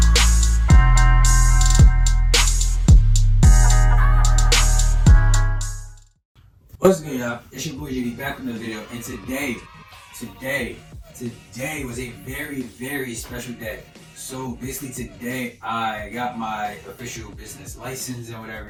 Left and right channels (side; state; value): both; identical; correlation 1.00